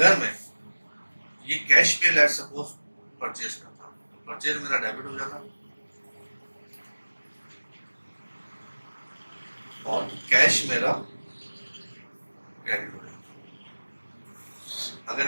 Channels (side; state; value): both; inverted; correlation -1.00